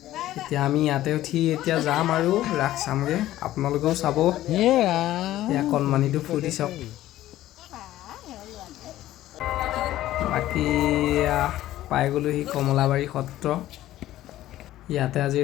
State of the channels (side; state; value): right; quieter; 14.4 dB